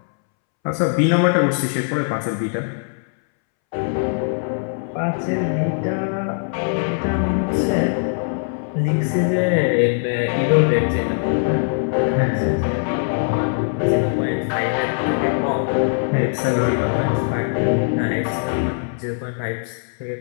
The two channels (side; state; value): right; silent; 65 dB below the other